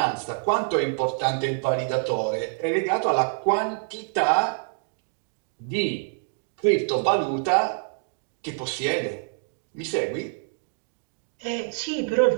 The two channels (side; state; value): left; silent; digital silence